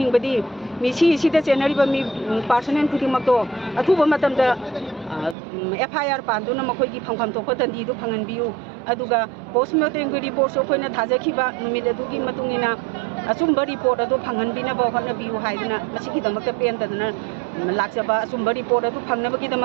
मिसी सिदा जेनरिबा मी पर्सोनेल खुदिमक्तो अथुबा मतमदा एफआईआर पानदुना मखोइगी फंफम तोप दंडी दु फंगनबियु अदुगा पोस्टमार्टम की रिपोर्ट सो अखोइना थाजखिबा नुमिद अदुगी मतुंगिना असुम्बा रिपोर्ट अदु फंगनबिना होनबियु हाइदना मसिगी दमक्ता पेंदना लाक्सबा असुम्बा रिपोर्ट अदु फंगनबगी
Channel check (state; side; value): drops out; left; at 5.4 s